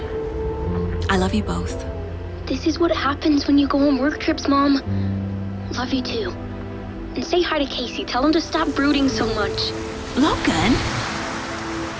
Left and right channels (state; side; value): identical; both; correlation 1.00